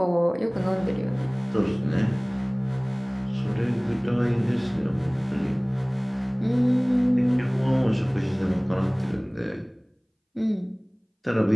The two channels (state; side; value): identical; both; correlation 1.00